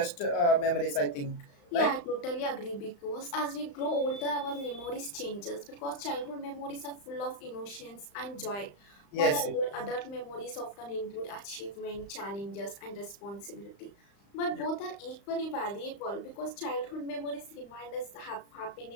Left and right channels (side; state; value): right; late; 35 ms